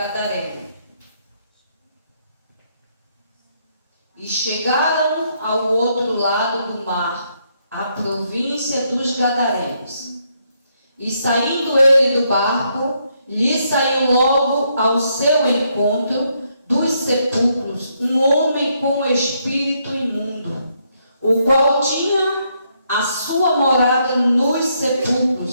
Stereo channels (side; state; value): both; inverted; correlation -0.75